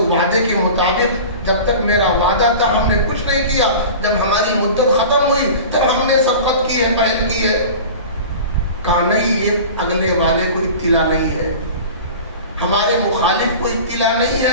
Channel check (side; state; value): both; inverted; correlation -0.37